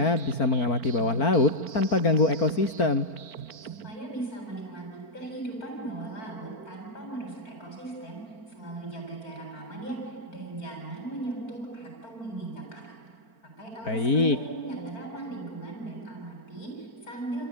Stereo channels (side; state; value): right; late; 4.4 ms